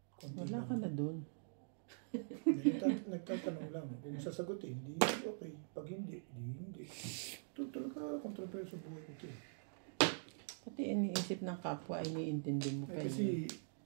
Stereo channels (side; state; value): left; silent; digital silence